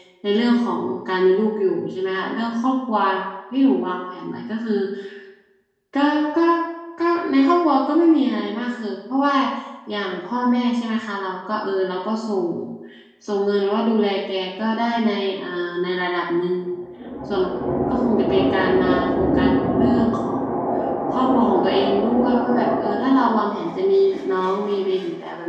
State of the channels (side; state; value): both; identical; correlation 1.00